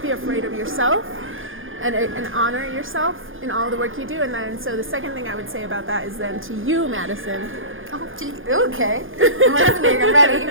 afraid of yourself and honor yourself in all the work you do. And then so the second thing I would say about that is then to you, Madison. Oh, okay. I'm listening. I'm ready.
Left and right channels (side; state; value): left; late; 0.59 ms